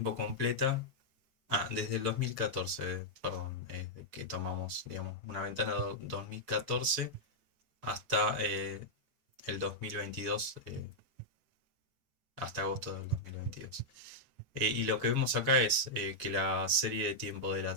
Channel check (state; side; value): late; left; 6.5 ms